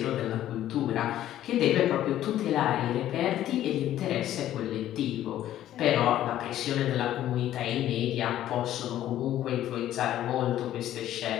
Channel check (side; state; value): right; quieter; 12.6 dB